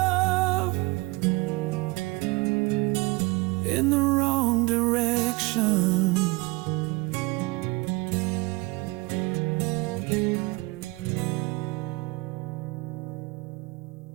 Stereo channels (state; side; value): quieter; left; 24.6 dB